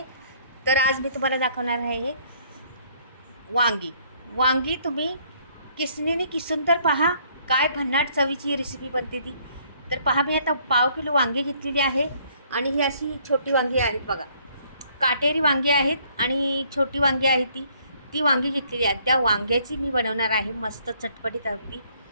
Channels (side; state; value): both; inverted; correlation -0.64